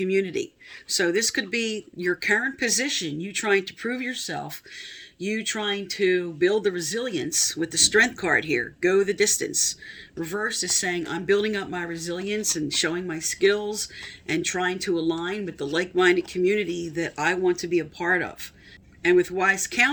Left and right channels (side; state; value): both; identical; correlation 1.00